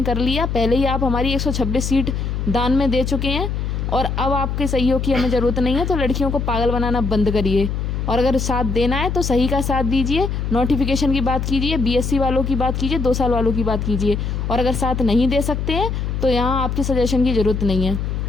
कर लिया। पहले ही आप हमारी 126 सीट दान में दे चुके हैं और अब आपके सहयोग की हमें ज़रूरत नहीं है। तो लड़कियों को पागल बनाना बंद करिए, और अगर साथ देना है तो सही का साथ दीजिए। नोटिफिकेशन की बात कीजिए, बीएससी वालों की बात कीजिए, 2 साल वालों की बात कीजिए। और अगर साथ नहीं दे सकते हैं तो यहाँ आपके सजेशन की ज़रूरत नहीं है।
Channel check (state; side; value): noise; left; hum, 2 dB below the sound